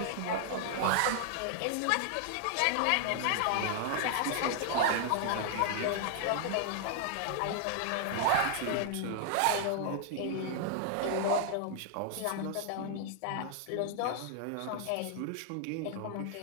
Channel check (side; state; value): both; different; correlation 0.00